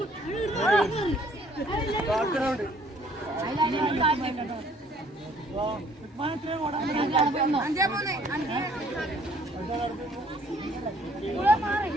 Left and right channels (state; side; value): normal; both; correlation 0.60